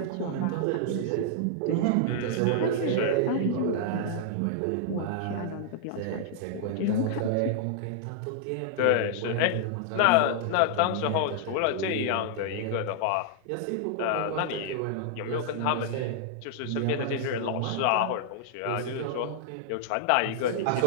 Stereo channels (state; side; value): different; both; correlation -0.01